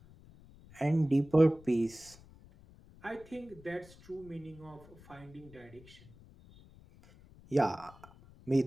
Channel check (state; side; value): noise; left; rumble, 23 dB below the sound